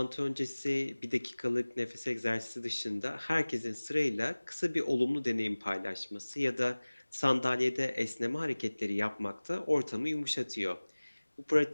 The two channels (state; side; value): inverted; both; correlation -1.00